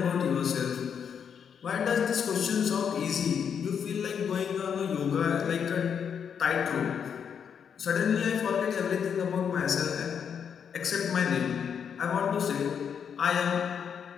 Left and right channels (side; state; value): right; quieter; 7.5 dB